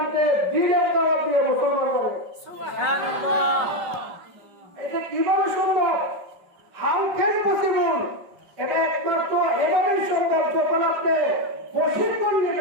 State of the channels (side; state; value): left; late; 5.4 ms